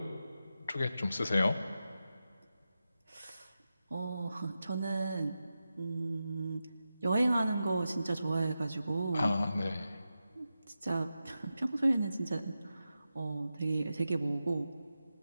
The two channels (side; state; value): both; inverted; correlation -0.91